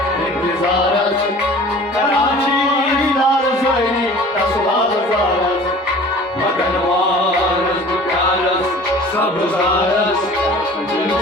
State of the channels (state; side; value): normal; both; correlation 0.44